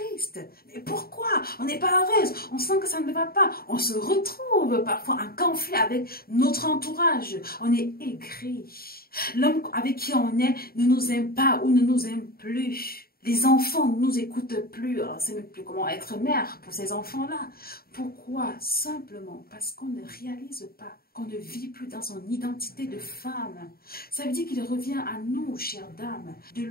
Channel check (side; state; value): right; late; 0.44 ms